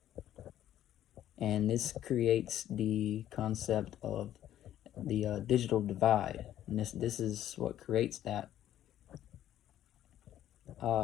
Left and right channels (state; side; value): quieter; right; 11.9 dB